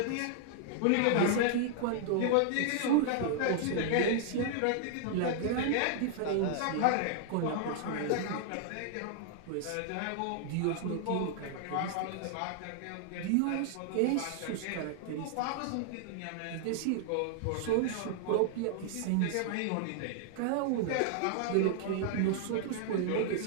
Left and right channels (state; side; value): different; both; correlation -0.01